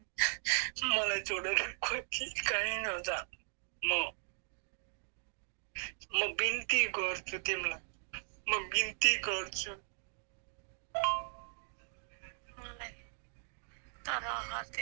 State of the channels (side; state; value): left; silent; digital silence